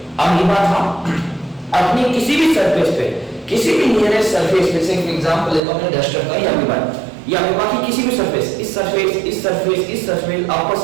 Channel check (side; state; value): left; drops out; at 5.6 s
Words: अमीबा था अपनी किसी भी सरफेस पे, किसी भी नियरेस्ट सरफेस पे से एग्जांपल लेता हूं मैं डस्टर का, या अमीबा की किसी भी सरफेस, इस सरफेस, इस सरफेस, इस surface, upper